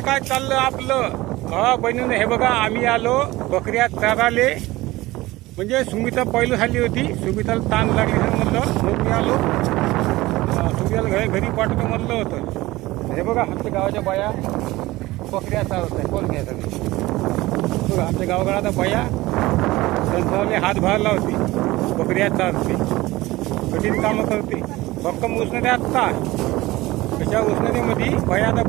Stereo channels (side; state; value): left; quieter; 19.0 dB